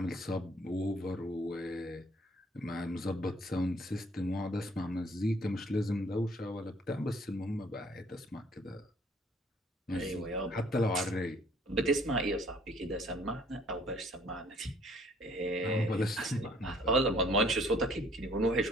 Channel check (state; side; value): normal; both; correlation 0.59